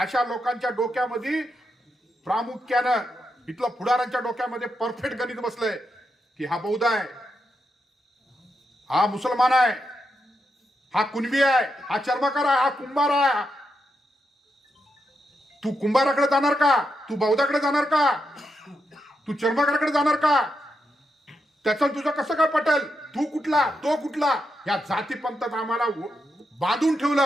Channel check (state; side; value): normal; both; correlation 0.84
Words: लोकांच्या डोक्यामध्ये प्रामुख्यानं इथलं पुढाऱ्यांच्या डोक्यामध्ये परफेक्ट गणित बसलंय की हा बौद्ध आहे, हा मुसलमान आहे, हा कुणबी आहे, हा चर्मकार आहे, हा कुंभार आहे. तू कुंभाराकडे जाणार का? तू बौद्धाकडे जाणार का? तू चर्मकाराकडे जाणार का? त्याचं तुझं कसं काय पटेल? तू कुठला, तो कुठला? या जातीपंथात आम्हाला बांधून